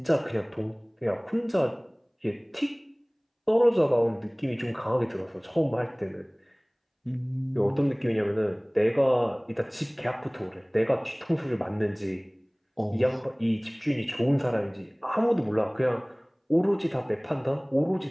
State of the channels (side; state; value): both; identical; correlation 1.00